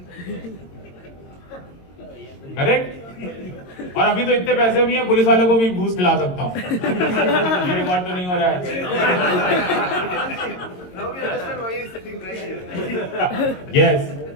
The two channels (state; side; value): late; right; 22 ms